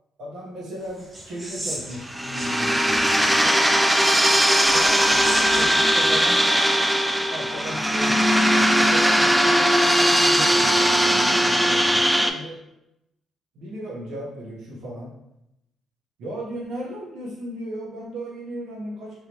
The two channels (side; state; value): both; normal; correlation 0.93